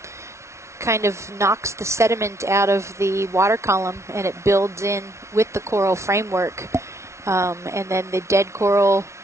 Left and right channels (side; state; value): left; late; 0.13 ms